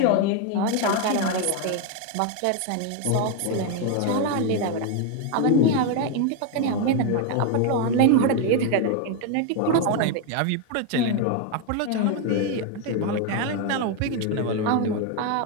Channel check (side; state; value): both; different; correlation 0.01